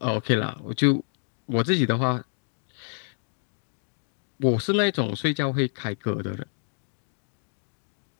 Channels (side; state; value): right; silent; 59 dB below the other